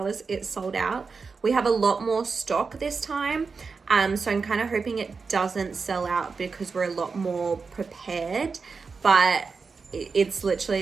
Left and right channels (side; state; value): left; quieter; 4.8 dB